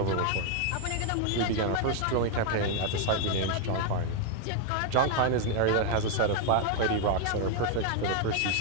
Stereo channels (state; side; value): different; both; correlation 0.01